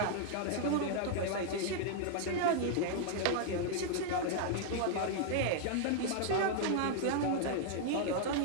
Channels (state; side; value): different; both; correlation 0.00